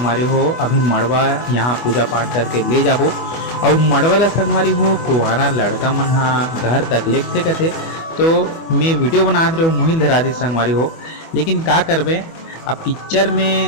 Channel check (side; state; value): right; late; 24 ms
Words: हो अभी मड़वा यहाँ पूजा पाठ करके ले जाबो और मड़वा ला संगवारी हो कुआरा लड़का मन हा घर तक लेते कथे। तो मैं वीडियो बना रहे हो मुहिल धरा दी संगवारी हो, लेकिन का करबे अब पिक्चर